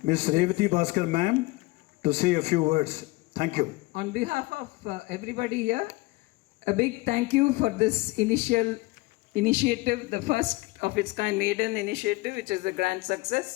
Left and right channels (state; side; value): quieter; right; 22.3 dB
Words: Revati Bhaskar ma'am to say a few words. Thank you. On behalf of everybody here, a big thank you for this initiative, the first of its kind maiden initiative, which is a grand